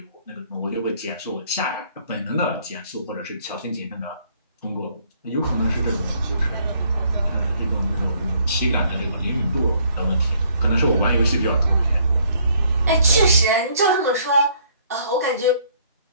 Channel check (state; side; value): inverted; both; correlation -0.64